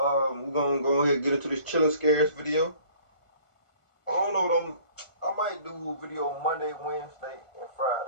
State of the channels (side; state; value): right; late; 1.5 ms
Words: gonna go ahead and get into this chilling scares video. I don't know what I might do a video Monday, Wednesday, and